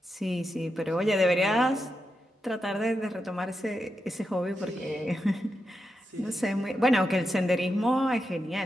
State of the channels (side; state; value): both; normal; correlation 0.87